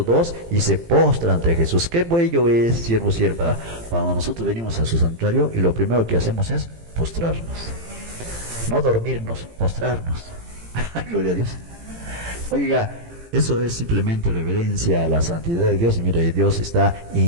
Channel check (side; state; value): left; late; 18 ms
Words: 2, y se postra ante Jesús. Qué bello es, siervo, sierva, cuando nosotros venimos a su santuario y lo primero que hacemos es postrarnos. No dormirnos, postrarnos. Gloria a Dios. Oiga, eso es simplemente reverencia a la santidad de Dios. Y mire, Dios